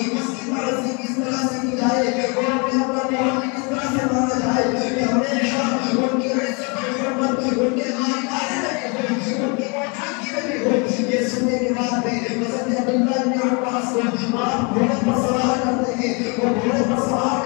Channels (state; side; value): quieter; right; 32.3 dB